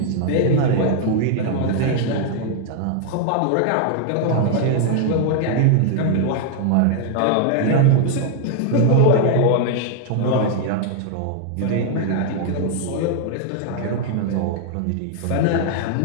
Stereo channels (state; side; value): different; both; correlation 0.00